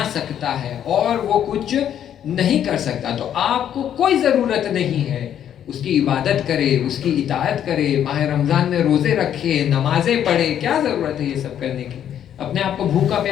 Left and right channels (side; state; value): right; quieter; 9.9 dB